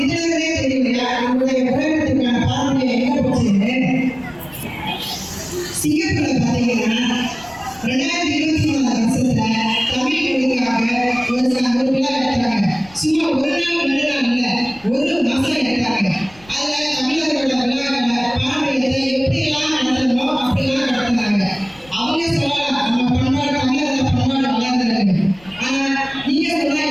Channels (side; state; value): left; noise; rumble, 25 dB below the sound